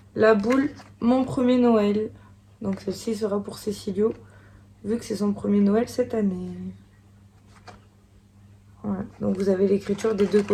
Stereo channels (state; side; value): identical; both; correlation 1.00